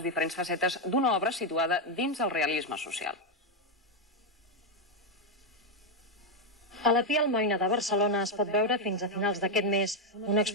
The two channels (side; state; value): both; normal; correlation 0.03